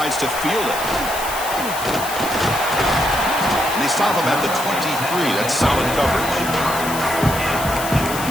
to field it. And they stop him at the 23. That's solid coverage.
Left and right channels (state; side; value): noise; left; hiss, 8 dB below the sound